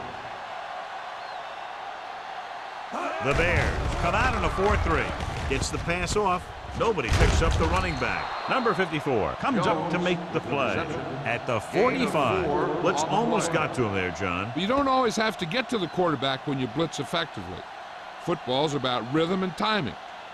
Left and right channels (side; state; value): both; identical; correlation 1.00